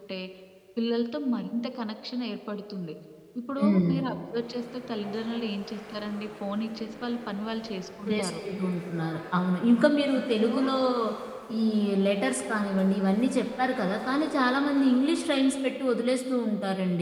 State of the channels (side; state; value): both; identical; correlation 1.00